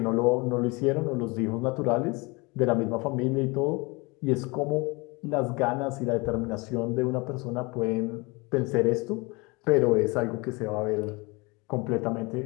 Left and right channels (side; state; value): right; quieter; 26.4 dB